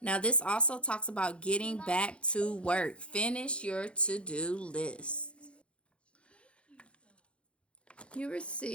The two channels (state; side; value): late; right; 0.059 ms